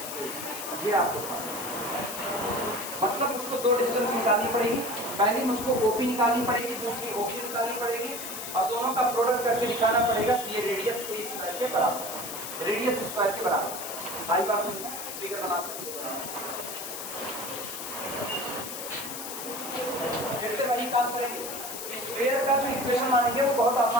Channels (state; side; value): noise; left; hiss, 7 dB below the sound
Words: ये आपको मतलब मुझको दो डिस्टेंस निकालनी पड़ेगी। पहली मुझको OP निकालनी पड़ेगी, दूसरी OQ निकालनी पड़ेगी और दोनों का प्रोडक्ट करके दिखाना पड़ेगा कि ये रेडियस A स्क्वायर के बराबर, रेडियस स्क्वायर के बराबर। आई बात समझ, फिगर बना सकते हो। फिर से वही काम करेंगे। स्क्वायर का जो इक्वेशन मानेंगे वो बहुत